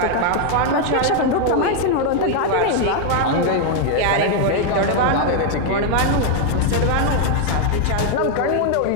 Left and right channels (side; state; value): both; different; correlation 0.00